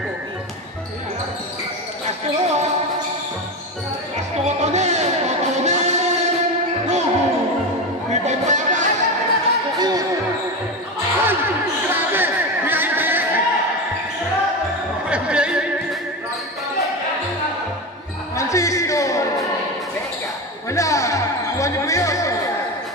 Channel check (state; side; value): normal; both; correlation 0.19